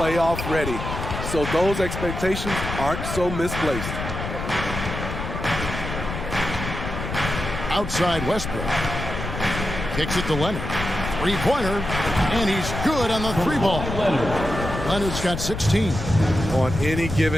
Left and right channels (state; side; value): noise; left; rumble, 6 dB below the sound